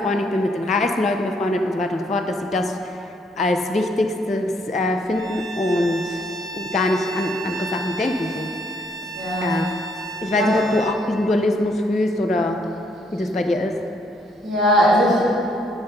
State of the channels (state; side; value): normal; both; correlation 0.70